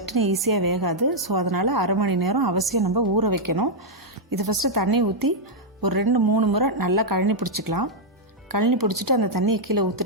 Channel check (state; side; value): normal; both; correlation -0.05